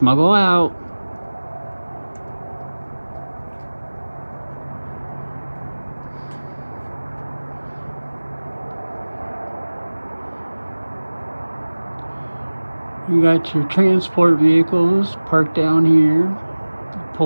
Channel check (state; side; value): inverted; both; correlation -1.00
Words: out. You got your transport vehicles parked down here,